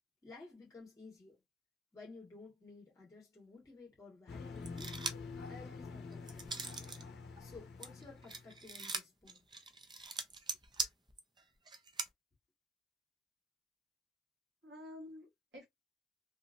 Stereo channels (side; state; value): both; normal; correlation 0.52